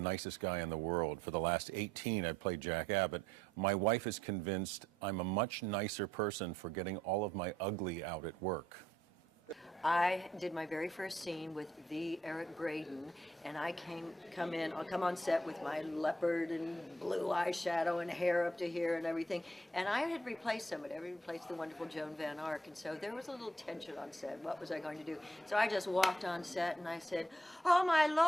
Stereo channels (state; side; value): normal; both; correlation 0.71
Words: guy in the world. For the last 18, I played Jack Abbott. My wife is convinced I'm a much nicer person for getting all of my ugly out at work. I did my very first scene with the Eric Braeden, and I'll come on set with my leopard and blue eyeshadow and hair up to here and everything. And I had replaced somebody. I replaced the wonderful Joan Van Ark, and so there was a little tension on set. What was I going to do? So I just walked on set and I said, "Oh my